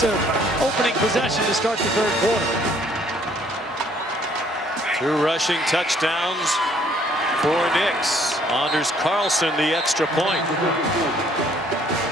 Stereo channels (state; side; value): normal; both; correlation 0.62